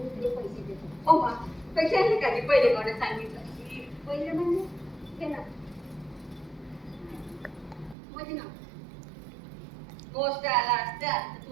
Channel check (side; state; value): left; drops out; at 8.0 s